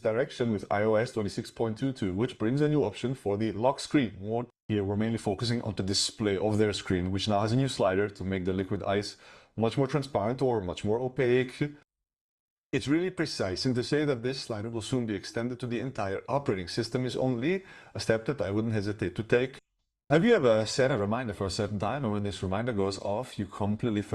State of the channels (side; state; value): both; identical; correlation 1.00